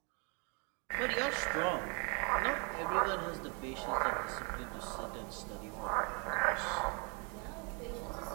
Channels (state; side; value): quieter; left; 35.1 dB